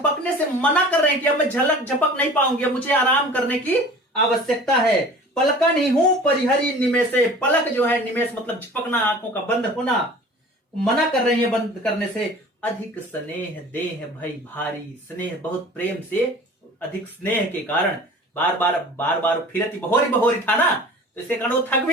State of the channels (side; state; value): both; normal; correlation 0.43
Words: से मना कर रहे हैं कि अब मैं झपक नहीं पाऊंगी, अब मुझे आराम करने की आवश्यकता है। पलकन ही हूं परिहरी निमेषे। पलक जो है, निमेष मतलब झपकना, आंखों का बंद होना, मना कर रही है बंद करने से। अधिक स्नेह देह भई भारी, स्नेह बहुत प्रेम से, अधिक स्नेह के कारण बार बार फिरती बहोरी बहोरी था ना, तो इसके कारण वो थक